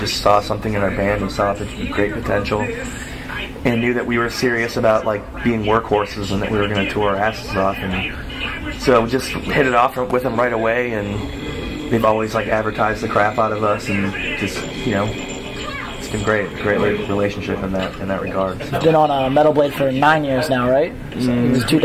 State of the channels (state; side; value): identical; both; correlation 1.00